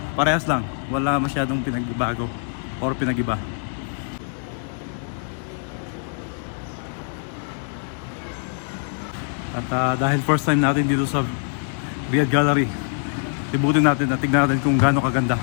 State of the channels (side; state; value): right; silent; 56 dB below the other